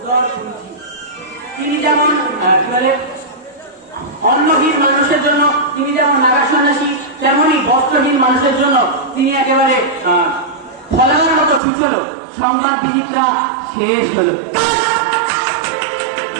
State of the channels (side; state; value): left; drops out; at 11.6 s